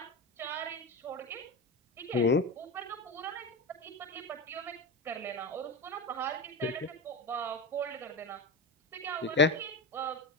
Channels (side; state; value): both; normal; correlation 0.21